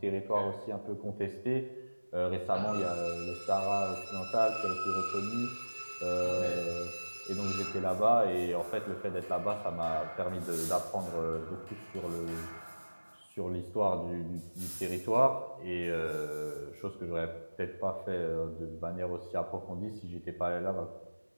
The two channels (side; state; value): both; inverted; correlation -1.00